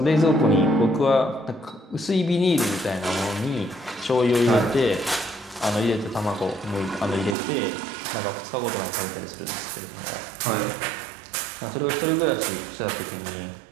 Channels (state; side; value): drops out; left; at 7.4 s